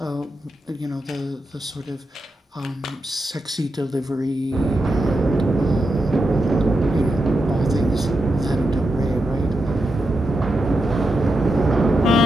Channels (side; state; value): both; normal; correlation 0.87